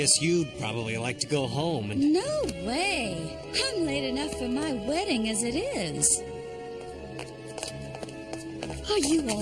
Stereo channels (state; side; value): identical; both; correlation 1.00